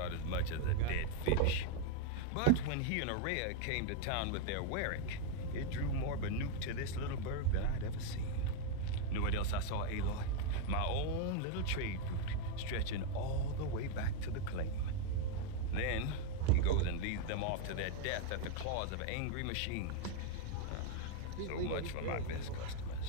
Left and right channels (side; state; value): both; different; correlation 0.01